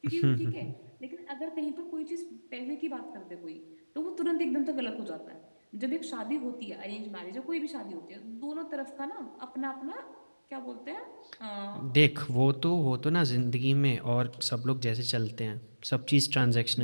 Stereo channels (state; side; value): inverted; both; correlation -1.00